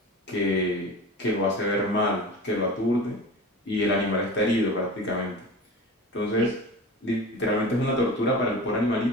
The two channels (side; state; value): both; normal; correlation 0.34